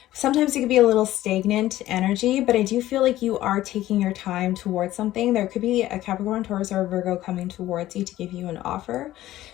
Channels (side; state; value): right; quieter; 14.7 dB